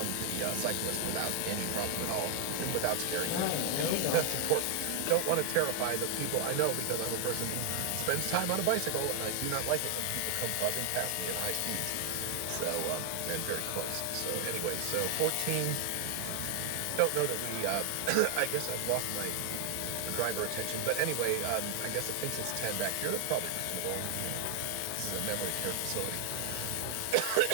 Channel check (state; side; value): different; both; correlation 0.00